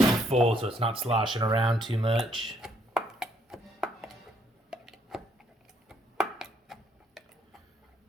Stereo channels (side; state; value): both; normal; correlation 0.69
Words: full so it's not sloshing around too much.